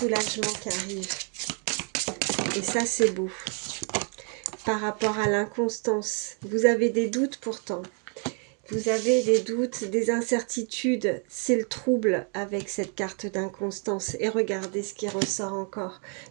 qui arrive. Et ça, c'est beau. Par rapport à l'inconstance, vous avez des doutes pourtant. Vous avez des doutes, des incertitudes. C'est le trouble avec cette carte d'inconstance. Et regardez ce qui ressort encore.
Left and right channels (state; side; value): quieter; left; 39.4 dB